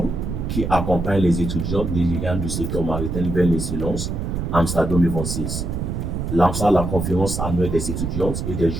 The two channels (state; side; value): noise; right; rumble, 3 dB below the sound